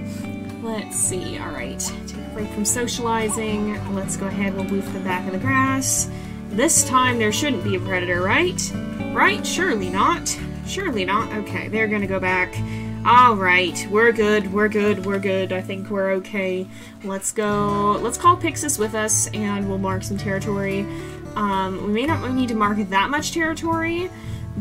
Let's see, alright. Take a break from socializing. Let's go ahead, we'll move to the back of the grass. This time there shouldn't be a predator, right? Right? Surely not. Surely not. Okay, they're gonna go back. Alright, we're good, we're good, we're good. I think we're okay. Let's go. Let's call Pyxis with us and we'll mark some territory. We may not need to mark that much territory,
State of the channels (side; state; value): both; identical; correlation 1.00